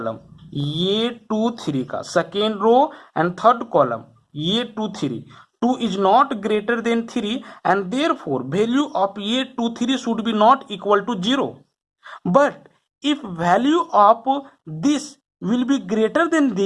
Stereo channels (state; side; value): identical; both; correlation 1.00